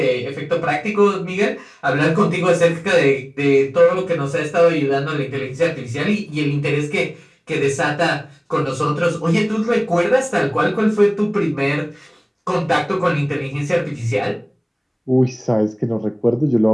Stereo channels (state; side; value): identical; both; correlation 1.00